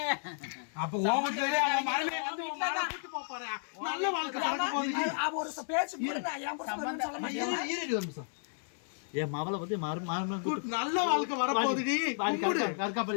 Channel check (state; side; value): silent; right; 56 dB below the other